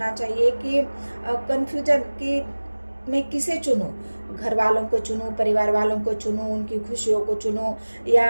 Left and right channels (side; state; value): both; inverted; correlation -1.00